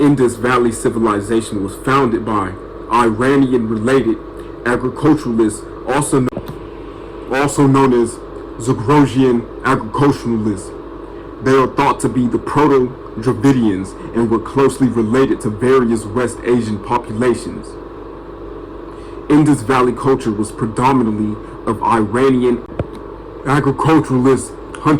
Valley civilization was founded by Iranian-related agriculturalists, also known as Zagrogian agriculturalists. They are thought to be the Proto-Dravidians and were closely related to various West Asian populations. Indus Valley culture was predominantly of Iranian agriculturalist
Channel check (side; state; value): both; identical; correlation 1.00